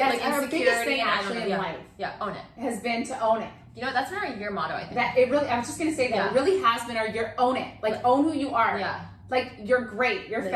like and our insecurity biggest thing and actually in yeah. life. Yeah, own it. Has been to own it. You know, that's been our year motto, I think. That it really, I was just gonna say that Yeah. it really has been our year, own it. Like own who you are. Yeah. Like, you're great. You're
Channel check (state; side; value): identical; both; correlation 1.00